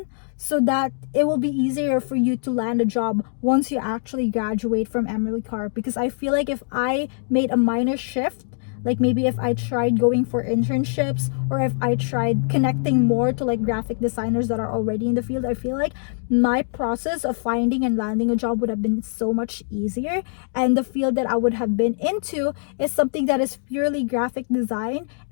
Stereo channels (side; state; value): right; silent; digital silence